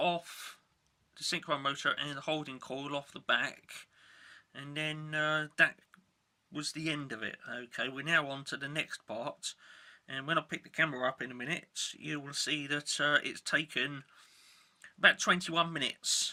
the synchro motor and the holding coil off the back, and then that was the end of it. Okay, we're now on to the next part, and when I pick the camera up in a minute, you will see that it's taken about 21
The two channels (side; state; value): both; identical; correlation 1.00